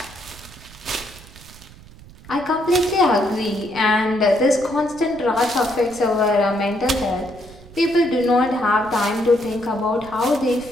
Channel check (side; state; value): right; noise; rumble, 20 dB below the sound